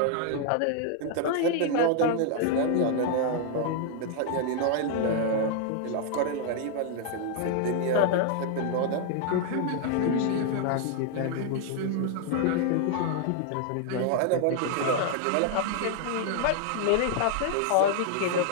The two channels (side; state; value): both; different; correlation 0.00